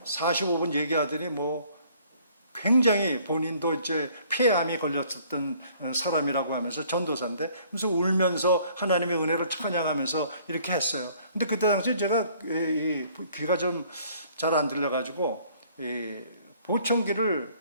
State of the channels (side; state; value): both; inverted; correlation -0.58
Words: 45분 얘기하더니 굉장히 본인도 이제 폐암이 걸렸었던 사람이라고 하면서 전도사인데, 그래서 울면서 하나님의 은혜를 찬양하면서 이렇게 했어요. 근데 그때 당시에 제가 귀가 좀 잘 안 들려가지고 이 보청기를